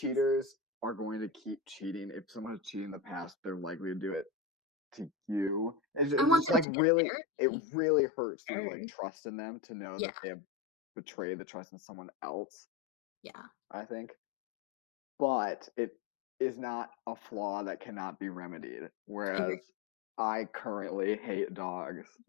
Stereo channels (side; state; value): right; drops out; at 6.7 s